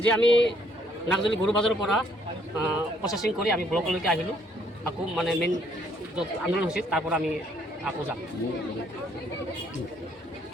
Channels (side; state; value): both; normal; correlation 0.66